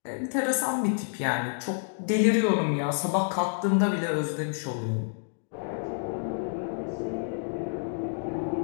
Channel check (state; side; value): silent; right; digital silence